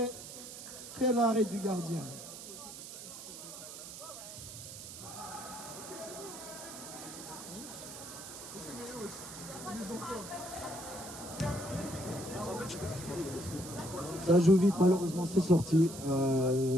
arrêt du gardien. Ça joue vite, malheureusement c'est sorti.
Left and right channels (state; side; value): noise; right; hiss, 11 dB below the sound